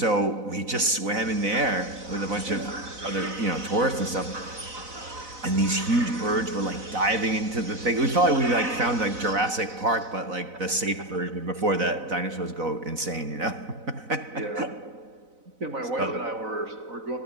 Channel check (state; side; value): late; left; 4.0 ms